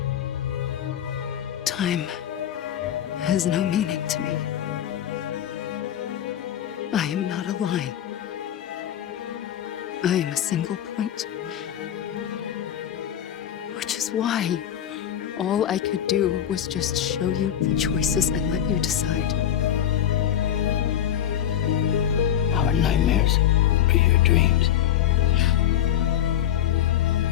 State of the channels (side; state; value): right; quieter; 10.4 dB